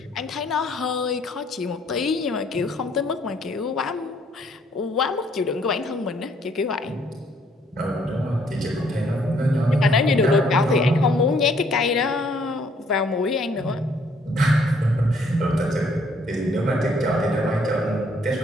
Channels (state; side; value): normal; both; correlation 0.64